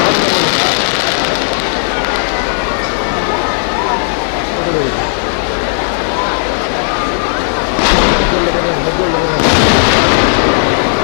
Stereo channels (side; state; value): right; silent; digital silence